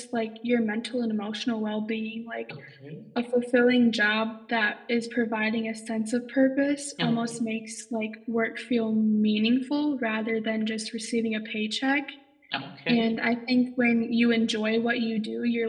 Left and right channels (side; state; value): both; identical; correlation 1.00